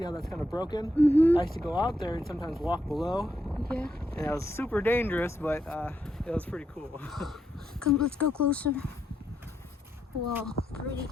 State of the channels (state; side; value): normal; both; correlation 0.80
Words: how that's kind of broken. I used to go out there and sometimes walk below. Yeah. And it was super dangerous, but it was pretty cool. Come, let's go closer. Wow, pretty.